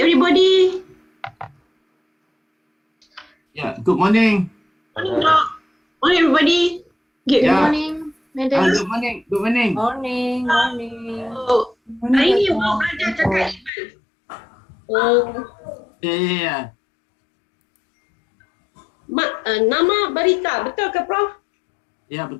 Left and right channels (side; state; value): right; drops out; at 13.7 s